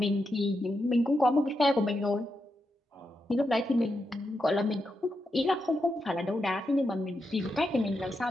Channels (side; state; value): both; normal; correlation 0.85